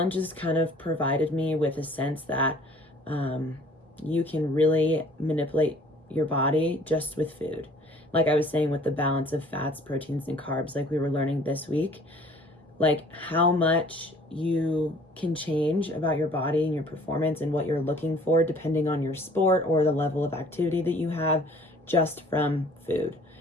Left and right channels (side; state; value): both; normal; correlation 0.54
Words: has kind of provided me with a sense that you can really manipulate your body just with food. Like I was saying, with the balance of fats, proteins, and carbs, like we were learning this week, like how much you can change about your body and your performance and what you're looking for depending on your sport or the level of activity that you have just from food,